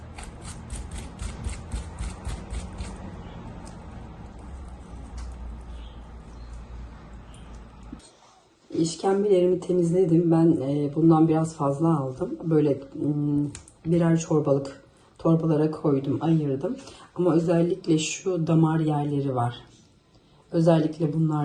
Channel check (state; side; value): identical; both; correlation 1.00